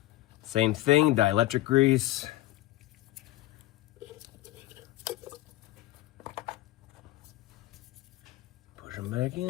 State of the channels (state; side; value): quieter; right; 16.7 dB